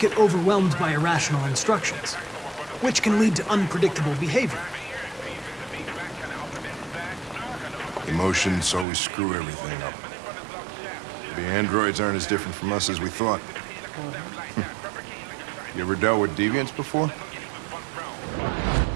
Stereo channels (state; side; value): drops out; left; at 8.8 s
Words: get overwhelmed by irrational instructions, which can lead to unpredictable behavior. Emotions always screw everything up. The androids aren't as different from us as we thought. You ever dealt with deviants before?